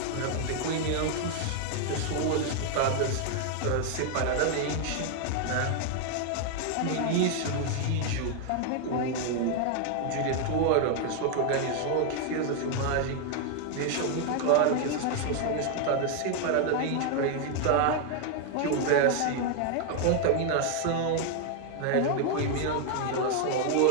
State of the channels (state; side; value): different; both; correlation 0.00